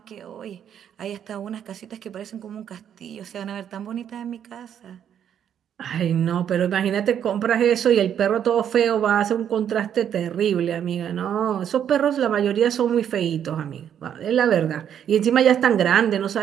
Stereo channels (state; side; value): quieter; left; 9.2 dB